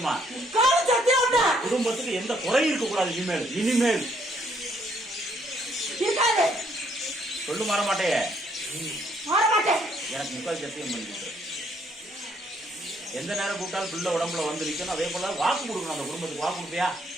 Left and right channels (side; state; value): both; normal; correlation 0.69